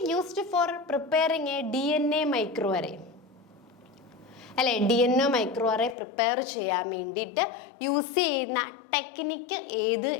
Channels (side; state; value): right; drops out; at 6.0 s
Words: used for preparing a DNA micro array അല്ലെ, DNA മൈക്രോ അറേ പ്രിപ്പയർ ചെയ്യാൻ വേണ്ടിയിട്ട് യൂസ് ചെയ്യുന്ന ടെക്നിക്ക് ഏത്